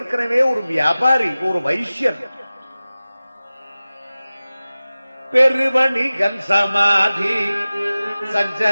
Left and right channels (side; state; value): both; inverted; correlation -0.96